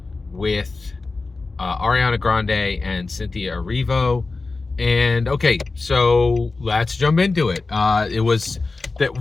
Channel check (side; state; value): right; quieter; 3.7 dB